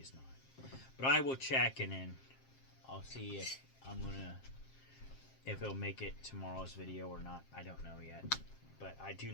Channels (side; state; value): right; late; 7.5 ms